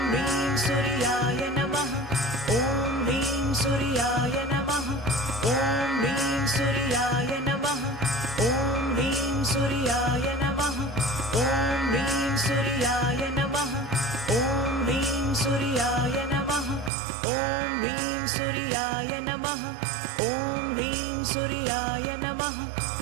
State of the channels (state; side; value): drops out; left; at 16.9 s